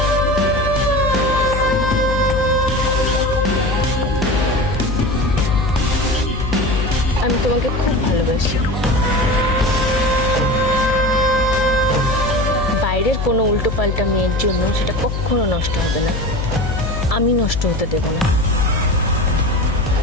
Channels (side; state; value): left; noise; hum, 3 dB below the sound